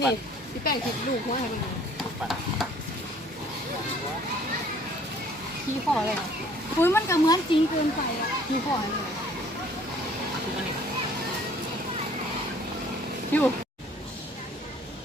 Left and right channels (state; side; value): normal; both; correlation 0.56